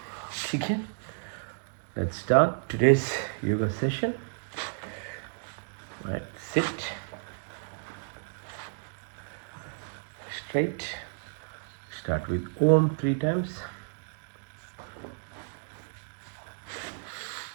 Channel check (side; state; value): left; silent; digital silence